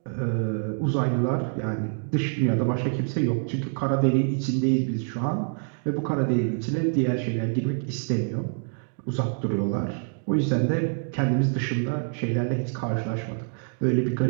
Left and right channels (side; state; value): left; silent; 58 dB below the other